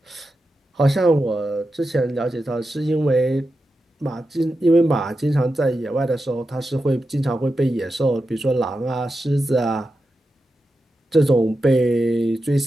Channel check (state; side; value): normal; both; correlation 0.90